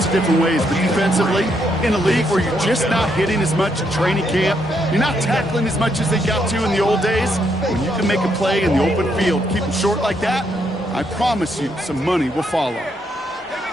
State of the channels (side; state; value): both; normal; correlation 0.76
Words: of different ways, but defensively, in a league where you're just not hitting as much at training camp, you're not tackling as much as they got to in the old days, when you can make a play in the open field, keep them short like that, I promise you some money will follow. Here